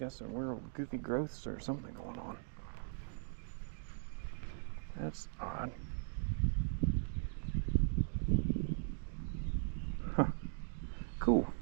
some weird goofy growths or something going on. That's odd. Huh. Cool.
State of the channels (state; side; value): silent; left; digital silence